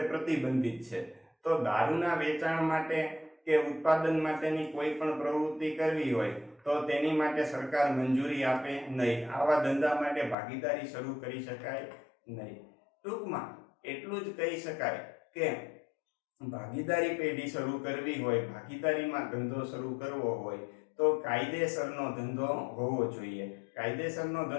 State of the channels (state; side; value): drops out; right; at 10.4 s